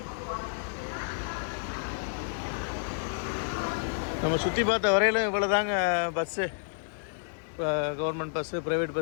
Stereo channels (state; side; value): silent; right; 58 dB below the other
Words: நம்ம சுற்றி பார்த்த வரையிலும் இவ்வளோ தாங்க bus. Government bus, private